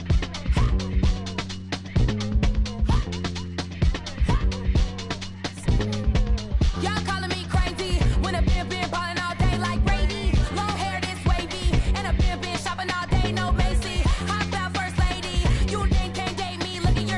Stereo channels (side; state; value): both; identical; correlation 1.00